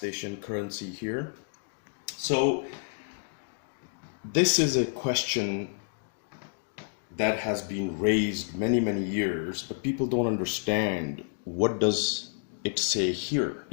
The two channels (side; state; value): right; silent; digital silence